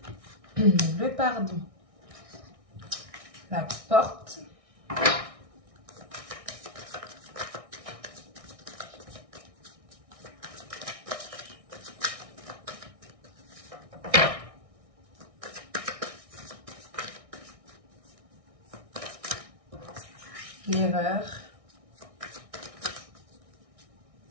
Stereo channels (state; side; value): late; left; 1.6 ms